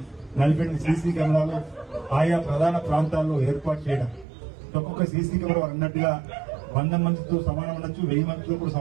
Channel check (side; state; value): left; drops out; at 4.2 s